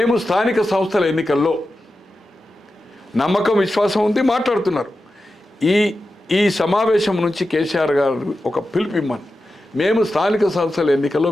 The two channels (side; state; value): both; normal; correlation 0.92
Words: స్థానిక సంస్థల ఎన్నికల్లో నమ్మకం, విశ్వాసం ఉంది మాట్లాడుతున్నారు. ఈ సమావేశం నుంచి కేసీఆర్ గారు ఒక పిలుపు ఇమ్మని, మేము స్థానిక సంస్థల ఎన్నికల్లో